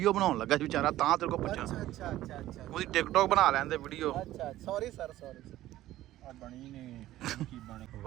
ਬਣਾਉਣ ਲੱਗਾ ਸੀ ਵਿਚਾਰਾ, ਤਾਂ ਤੇਰੇ ਕੋਲ ਪੁੱਛਾਂ। ਅੱਛਾ ਉਹਦੀ ਟਿਕਟੋਕ ਬਣਾ ਲੈਂਦੇ ਵੀਡੀਓ। ਅੱਛਾ ਸੌਰੀ ਸਰ, ਸੌਰੀ ਆ ਬਣੀ ਨੇ ਕੀ ਬਣੇ।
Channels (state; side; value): quieter; left; 14.7 dB